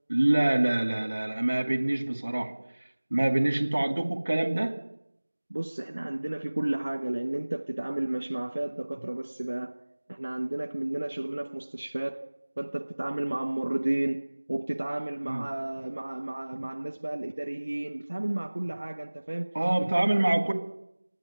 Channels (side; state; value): both; inverted; correlation -1.00